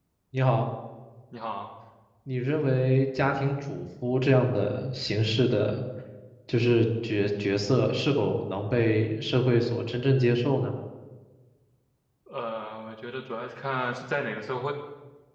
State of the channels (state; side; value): identical; both; correlation 1.00